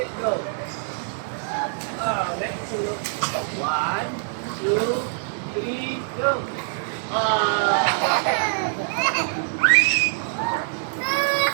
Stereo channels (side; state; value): left; silent; digital silence